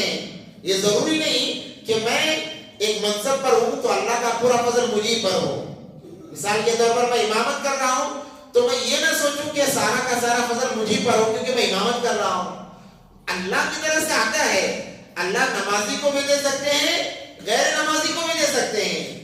یہ ضروری نہیں کہ میں ایک منصب پر ہوں تو اللہ کا پورا فضل مجھے پر ہو. مثال کے طور پر میں امامت کر رہا ہوں تو میں یہ نہ سوچوں کہ سارا کا سارا فضل مجھے پر ہو کیونکہ میں امامت کر رہا ہوں. اللہ کی طرف سے آتا ہے. اللہ نمازی کو بھی دے سکتے ہیں، غیر نمازی کو بھی دے سکتے ہیں،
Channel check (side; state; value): both; identical; correlation 1.00